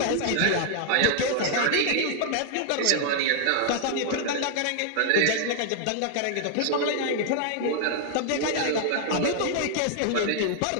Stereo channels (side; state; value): both; different; correlation 0.00